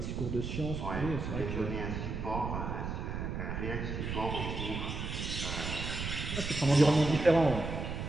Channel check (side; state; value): right; noise; rumble, 4 dB below the sound